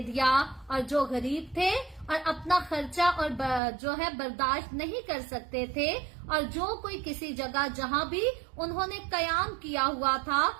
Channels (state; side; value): drops out; left; at 3.6 s